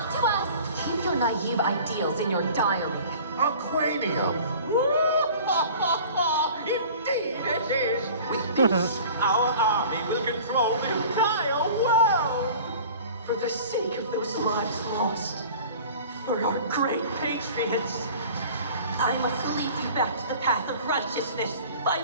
to us! Keep your naive ideals in your diary. Aquanium! Indeed it is! With this, our army will control the entire world! For the sake of those lives lost, for our great patriots, I must lead you back to the path of righteousness by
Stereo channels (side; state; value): both; inverted; correlation -0.44